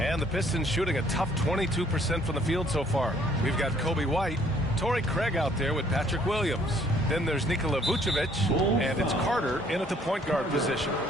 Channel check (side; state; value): both; normal; correlation 0.62